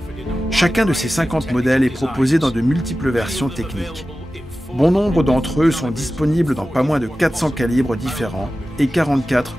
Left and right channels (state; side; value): normal; both; correlation 0.95